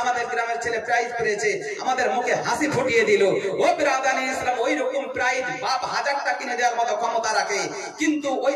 আমাদের গ্রামের ছেলে প্রাইজ পেয়েছে, আমাদের মুখে হাসি ফুটিয়ে দিল। ও বিরাদান ইসলাম, ওই রকম প্রাইজ বাপ 1000টা কিনে দেওয়ার মতো ক্ষমতা রাখে, কিন্তু ওই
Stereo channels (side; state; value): both; identical; correlation 1.00